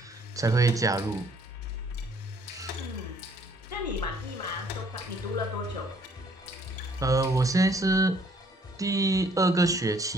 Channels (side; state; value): both; normal; correlation 0.62